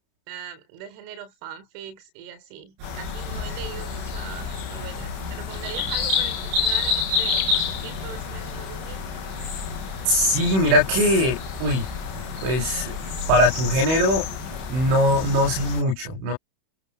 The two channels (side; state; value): left; late; 31 ms